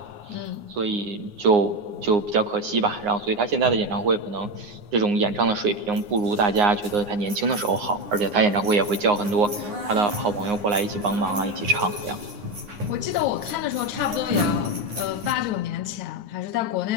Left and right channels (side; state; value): left; late; 9.7 ms